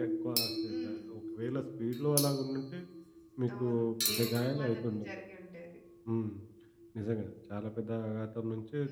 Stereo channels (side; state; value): both; identical; correlation 1.00